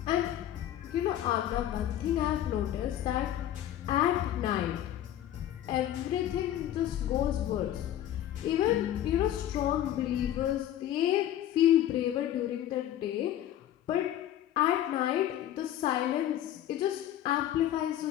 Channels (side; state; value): right; quieter; 11.9 dB